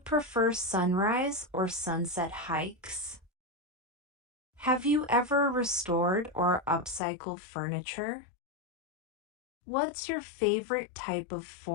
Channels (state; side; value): drops out; right; at 7.0 s